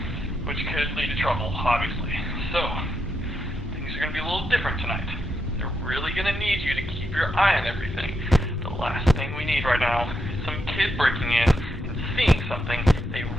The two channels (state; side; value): normal; both; correlation 0.83